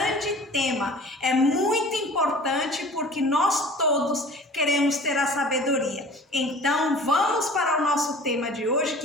tema! É muito importante porque nós todos queremos ter a sabedoria. Então vamos para o nosso tema de hoje,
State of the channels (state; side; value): normal; both; correlation 0.44